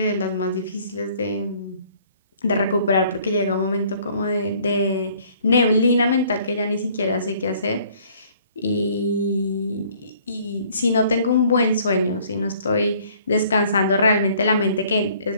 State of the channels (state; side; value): inverted; both; correlation -0.58